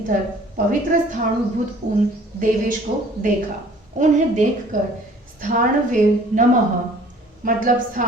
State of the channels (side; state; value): both; normal; correlation 0.53